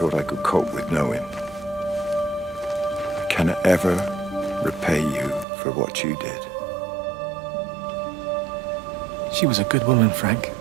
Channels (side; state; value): left; drops out; at 5.5 s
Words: I could cope with knowing. I cannot ever repay you for what you did. She was a good woman, Frank.